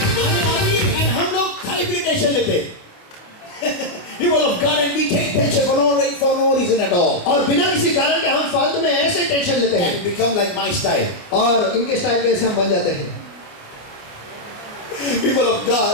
हम लोग खाली पीली टेंशन लेते people of God, and we take tension for no reason at all. और बिना किसी कारण के हम फालतू में ऐसे टेंशन लेते हैं And become like my style. और इनके स्टाइल के ऐसे हम बन जाते हैं। People of God.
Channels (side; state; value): right; late; 28 ms